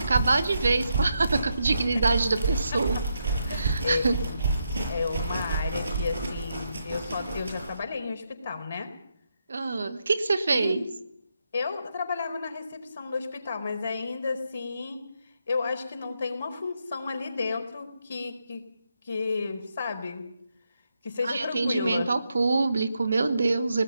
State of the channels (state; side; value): inverted; both; correlation -0.82